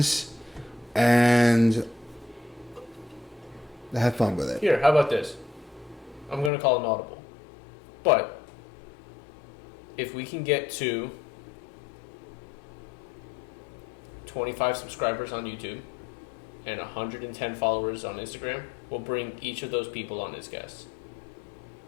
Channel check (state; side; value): drops out; right; at 6.5 s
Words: And have fun with it. Here, how about this? I'm going to call an audible. But if we can get to 25 subscribers on YouTube and 110 followers on Instagram, we'll bring each of those people on as guests.